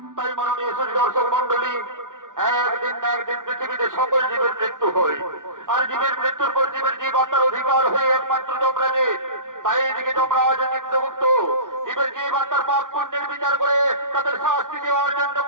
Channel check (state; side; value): late; left; 0.88 ms